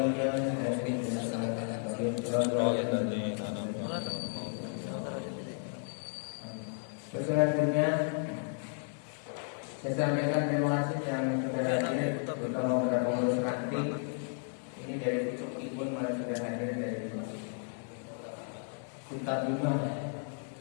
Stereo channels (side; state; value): right; silent; 55 dB below the other